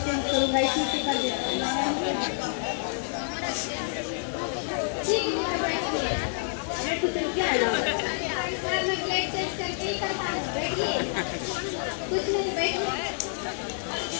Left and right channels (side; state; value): right; silent; digital silence